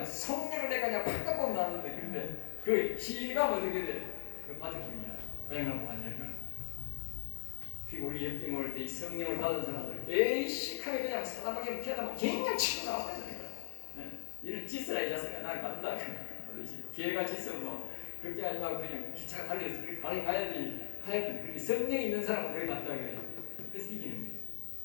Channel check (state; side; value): silent; right; 52 dB below the other